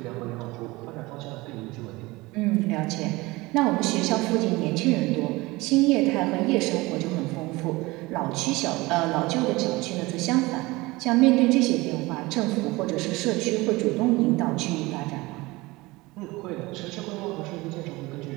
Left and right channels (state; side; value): quieter; left; 21.7 dB